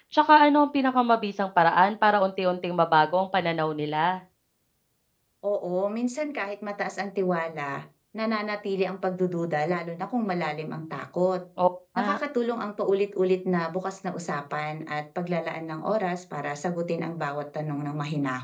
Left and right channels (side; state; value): both; identical; correlation 1.00